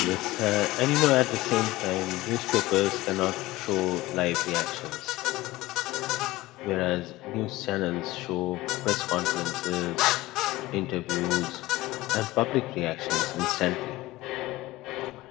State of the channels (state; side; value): quieter; right; 18.5 dB